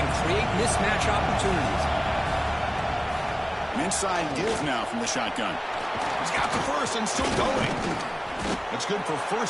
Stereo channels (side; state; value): both; identical; correlation 1.00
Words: create mismatch opportunities. An inside give now from the shotgun. He's got the first and still going. That's good for